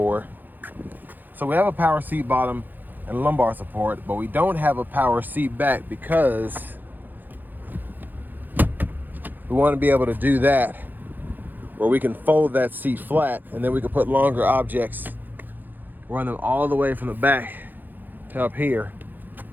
So we have a power seat bottom and lumbar support, but we don't have a power seat back because we want to be able to do that where we can fold that seat flat, and then we can put longer objects, run them all the way from the back to up here.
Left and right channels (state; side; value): late; left; 0.087 ms